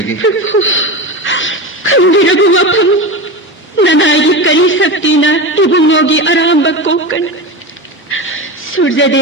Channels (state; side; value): normal; both; correlation 0.23